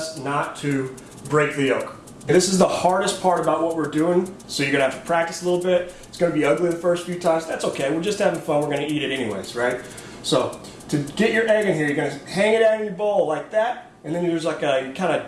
not to break the yolk. And this is the hardest part about what we're doing, so you're gonna have to practice a little bit. It's gonna be ugly the first few times. That's okay, we're just having fun. We're gonna eat it anyways, right? So to get your egg in here, you're gonna hang it out in your bowl like that, and then there's like you're kind of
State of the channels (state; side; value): identical; both; correlation 1.00